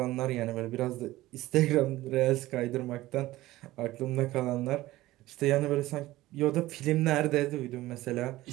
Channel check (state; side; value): quieter; left; 17.1 dB